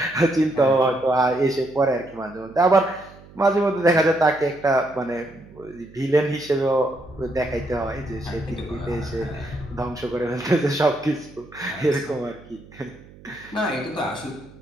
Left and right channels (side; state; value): right; noise; hum, 22 dB below the sound